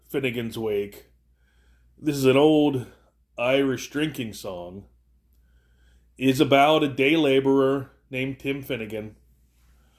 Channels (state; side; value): identical; both; correlation 1.00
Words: Finnegan's Wake, this is an old Irish drinking song, is about a day laborer named Tim Finnegan